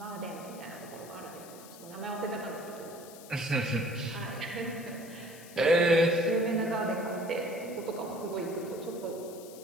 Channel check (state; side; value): noise; left; hiss, 18 dB below the sound